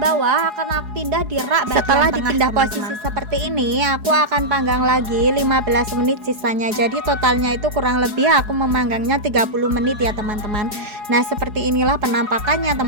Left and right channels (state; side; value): late; left; 4.8 ms